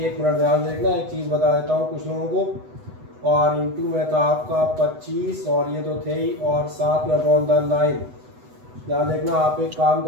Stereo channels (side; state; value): left; late; 8.1 ms